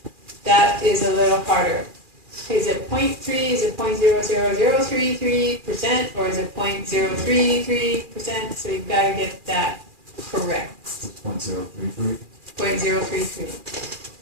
that is a little harder. Is it 0.3, is it 0.00033%, or is it 0.033%? So you've got to get that correct. 0.033.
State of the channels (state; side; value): late; left; 2.4 ms